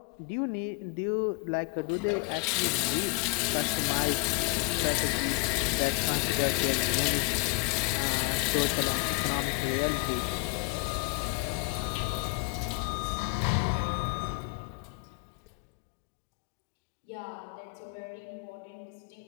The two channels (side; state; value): right; quieter; 28.8 dB